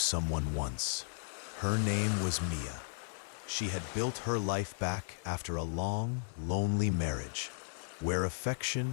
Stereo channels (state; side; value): silent; right; digital silence